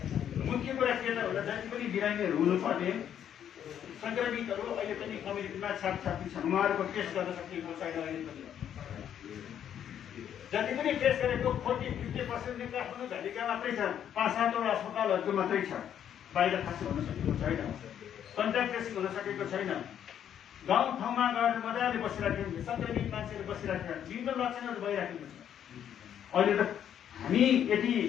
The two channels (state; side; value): quieter; right; 9.6 dB